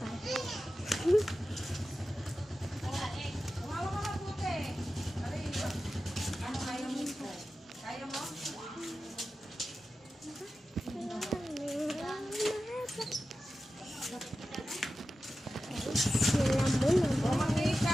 Umawa ka mabuti. Ano kaya mo? Kaya mo?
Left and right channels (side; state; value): both; normal; correlation 0.93